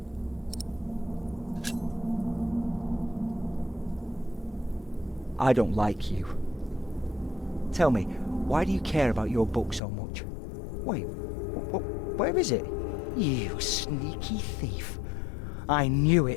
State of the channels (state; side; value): drops out; right; at 9.8 s